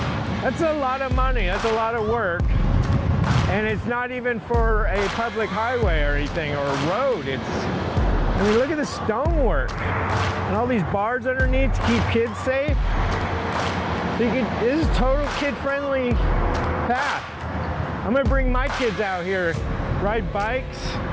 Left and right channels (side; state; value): both; identical; correlation 1.00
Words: That's a lot of money, that's a lot of work. And it's not even for a public highway or anything, or a road. I mean, look at the stonework. And all these bars underneath to keep kids safe. So this is total kid-friendly path. I'm gonna bring my kids out here, ride bikes,